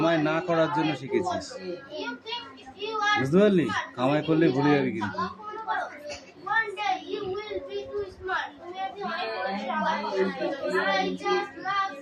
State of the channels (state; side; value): identical; both; correlation 1.00